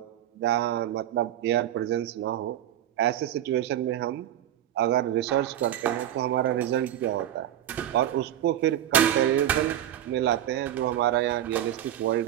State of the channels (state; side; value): quieter; left; 11.8 dB